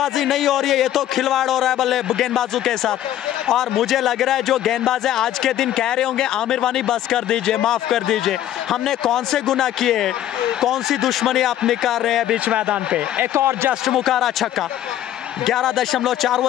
नहीं हो रही है, ये तो खिलवाड़ हो रहा है गेंदबाजों के साथ। और मुझे लग रहा है जो गेंदबाज है आज के दिन कह रहे होंगे आमिर वानी बस कर दीजिए, माफ कर दीजिए, हमने कौन से गुनाह किए, कौन सी दुश्मनी आप निकाल रहे हैं बीच मैदान पे। एक और जस्ट मुकारा छक्का। 11.4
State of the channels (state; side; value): quieter; right; 12.3 dB